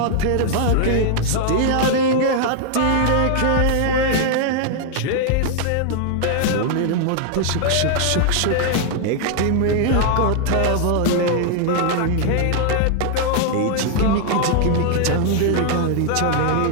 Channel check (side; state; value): both; different; correlation 0.00